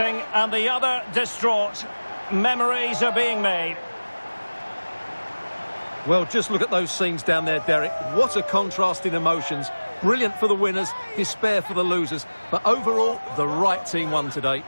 and the other distraught. Memories are being made. Well, just look at those scenes down there, Derek. What a contrast in emotions. Brilliant for the winners, despair for the losers. But overall, the right team won today.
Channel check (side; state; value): both; inverted; correlation -1.00